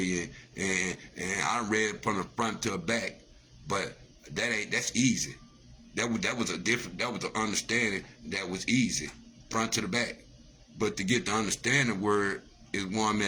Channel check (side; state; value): both; identical; correlation 1.00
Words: And I read it from the front to the back, but that's easy. That was an understanding that was easy, front to the back. But to get the understanding word is where I'm